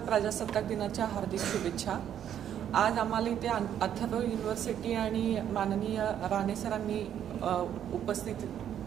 प्रजासत्ताक दिनाच्या हार्दिक शुभेच्छा. आज आम्हाला इथे अथर्व युनिव्हर्सिटी आणि माननीय राणे सरांनी उपस्थित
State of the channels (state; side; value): quieter; left; 9.9 dB